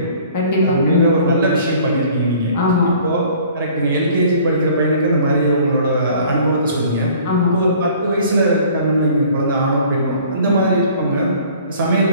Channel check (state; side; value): inverted; both; correlation -0.52